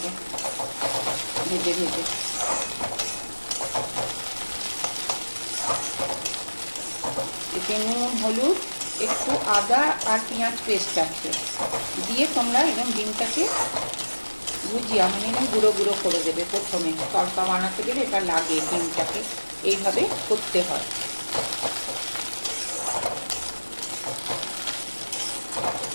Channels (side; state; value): both; inverted; correlation -1.00